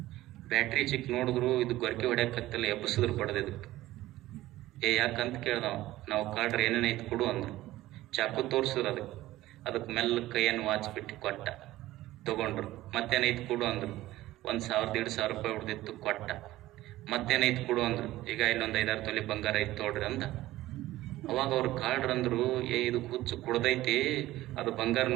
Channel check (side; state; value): left; quieter; 16.2 dB